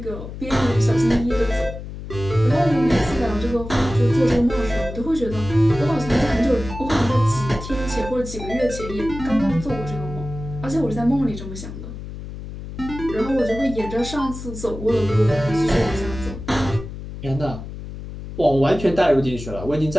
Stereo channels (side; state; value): left; noise; hum, 10 dB below the sound